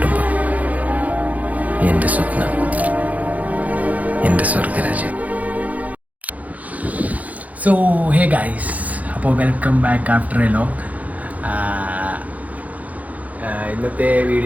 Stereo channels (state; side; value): late; left; 0.074 ms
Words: എൻ്റെ സ്വപ്നം, എൻ്റെ സ്വർഗരാജ്യം. സോ ഹേ ഗൈസ്, അപ്പോൾ welcome back after A long. ഇന്നത്തെ